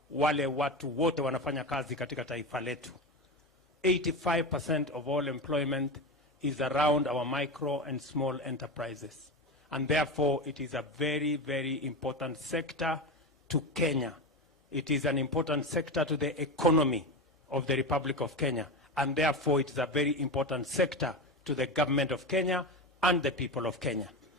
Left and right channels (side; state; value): both; normal; correlation 0.20